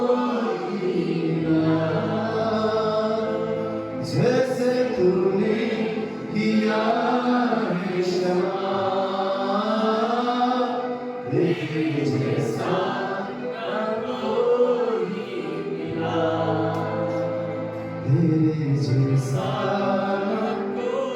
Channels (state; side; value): identical; both; correlation 1.00